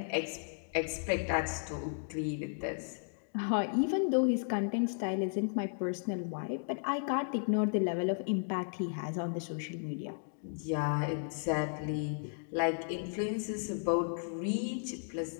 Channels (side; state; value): right; silent; digital silence